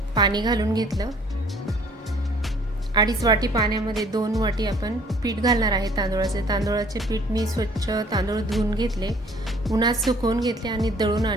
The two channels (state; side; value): normal; both; correlation 0.57